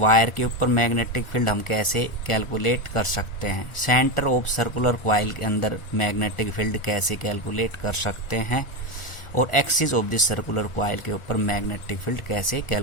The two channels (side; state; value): right; late; 1.7 ms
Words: के ऊपर मैग्नेटिक फील्ड हम कैसे कैलकुलेट कर सकते हैं, सेंटर ऑफ सर्कुलर कॉइल के अंदर मैग्नेटिक फील्ड कैसे कैलकुलेट कर सकते हैं, और axis of the circular coil के ऊपर मैग्नेटिक फील्ड कैसे